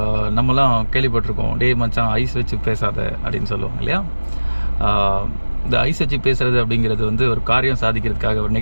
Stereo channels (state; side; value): inverted; both; correlation -1.00